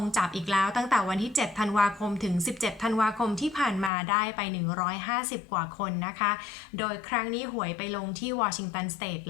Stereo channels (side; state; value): right; drops out; at 3.9 s